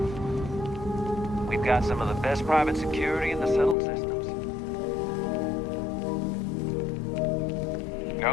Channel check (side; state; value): right; drops out; at 3.8 s